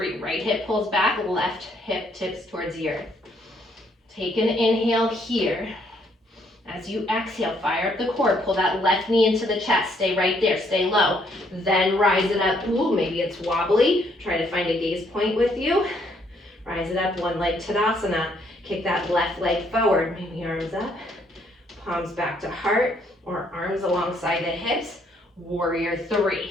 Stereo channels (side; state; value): both; normal; correlation 0.69